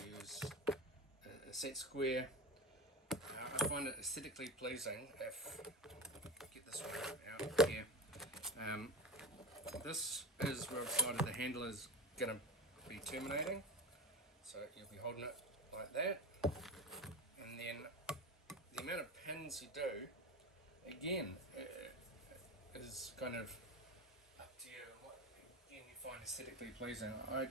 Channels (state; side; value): normal; both; correlation 0.28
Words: use a set square. I find it aesthetically pleasing if get this one out here. This is where I've decided the handle is going to be terminating, so you'll be holding it like that, and then the amount of pins you do again is kind of up to you. What again you find aesthetically pleasing. I